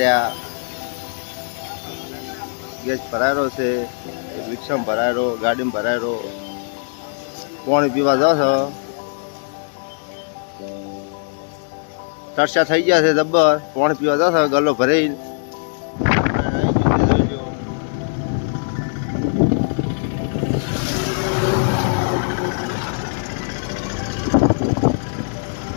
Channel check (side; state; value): right; silent; 65 dB below the other